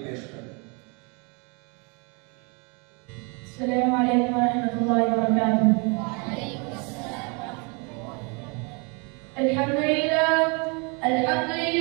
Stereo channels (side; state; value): left; quieter; 33.0 dB